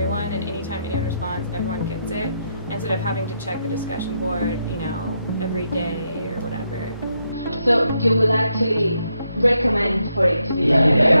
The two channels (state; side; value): inverted; both; correlation -0.80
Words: and anytime anyone responds, everyone gets it, instead of having to check the discussion board, you know, every day or whatever. So you will actually recommend for it to be yeah.